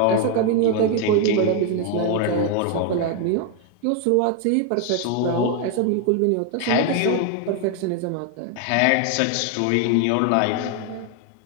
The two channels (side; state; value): both; different; correlation 0.01